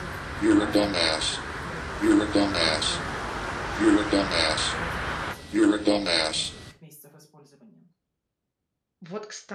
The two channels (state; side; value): identical; both; correlation 1.00